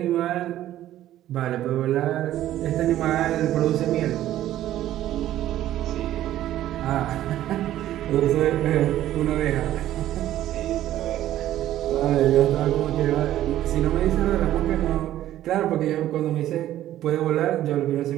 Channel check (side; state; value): left; quieter; 13.1 dB